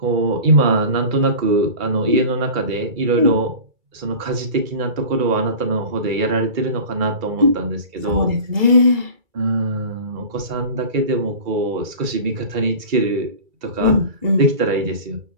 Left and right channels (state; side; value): late; left; 2.3 ms